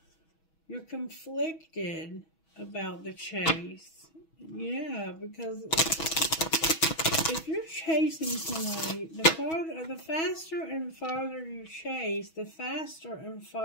You're conflicted about the chase. Yeah, because if you're chasing somebody, the faster and farther you chase, the faster and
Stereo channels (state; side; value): late; right; 6.2 ms